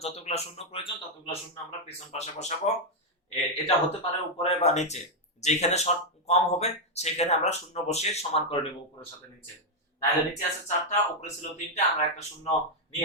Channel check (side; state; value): both; normal; correlation 0.00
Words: যতগুলো শূন্য প্রয়োজন ততগুলো শূন্য আমরা পেছন পাশে বসাবো। এটা হতে পারে উপরে বা নিচে, যেখানে শর্ট কম হবে সেখানে আমরা শূন্য বসিয়ে সমান করে নেব উপরের সাথে নিচে। তাহলে নিচে আছে চারটা, উপরে ছিল তিনটা, আমরা একটা শূন্য